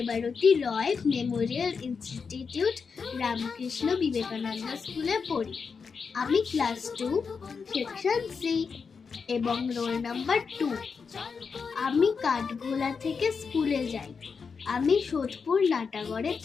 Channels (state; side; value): quieter; right; 5.5 dB